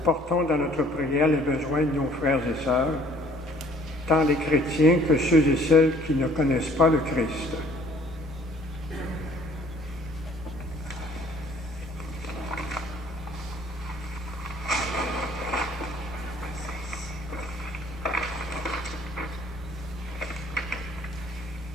portons dans notre prière les besoins de nos frères et sœurs, tant les chrétiens que ceux et celles qui ne connaissent pas le Christ.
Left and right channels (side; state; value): both; normal; correlation 0.57